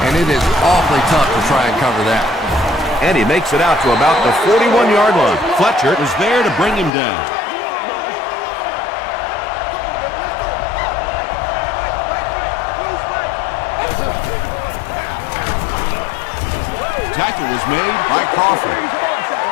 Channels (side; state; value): right; drops out; at 6.9 s